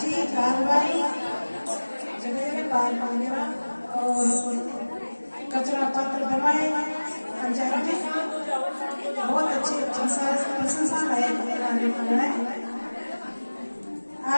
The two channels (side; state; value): both; inverted; correlation -1.00